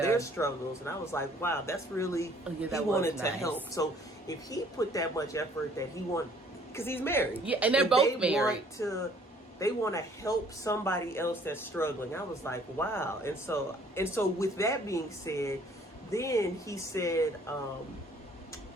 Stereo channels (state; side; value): normal; both; correlation 0.58